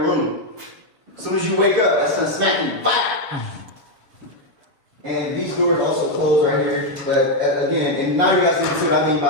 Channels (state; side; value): late; left; 7.0 ms